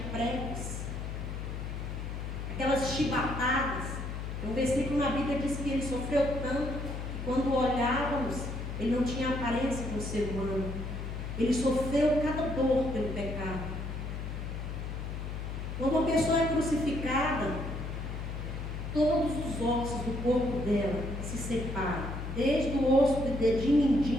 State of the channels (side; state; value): left; noise; hum, 5 dB below the sound